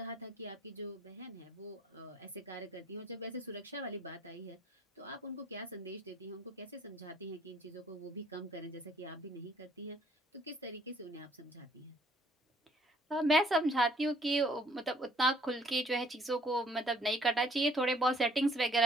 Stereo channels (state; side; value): normal; both; correlation 0.61